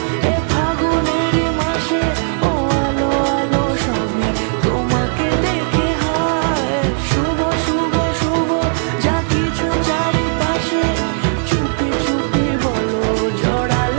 এ ফাগুনেরই মাসে, ও আলো আলো সবই তোমাকে দেখে হায়। শুভ শুভ শুভ যা কিছু চারিপাশে, চুপি চুপি বলো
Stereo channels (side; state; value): left; silent; digital silence